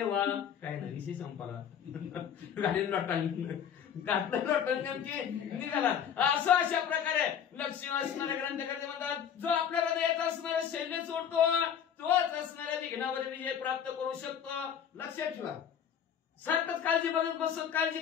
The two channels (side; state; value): right; quieter; 8.4 dB